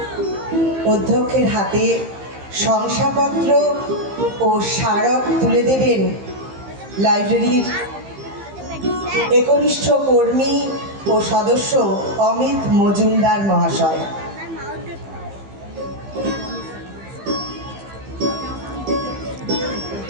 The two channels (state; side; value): late; left; 15 ms